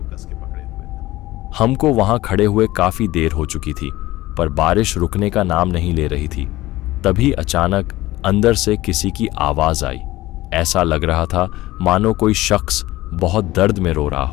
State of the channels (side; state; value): right; quieter; 17.6 dB